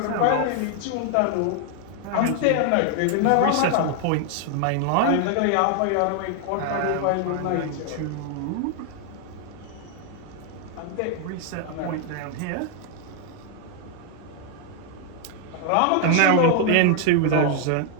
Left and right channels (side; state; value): both; different; correlation 0.00